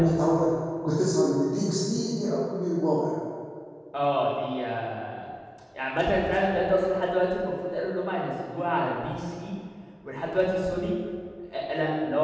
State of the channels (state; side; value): identical; both; correlation 1.00